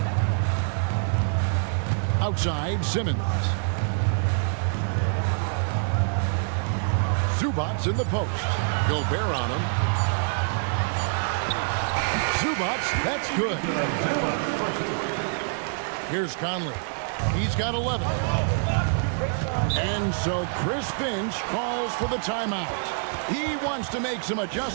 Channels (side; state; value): left; silent; digital silence